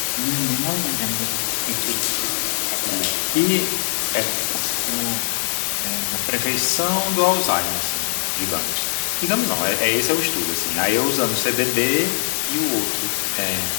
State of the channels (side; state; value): right; silent; digital silence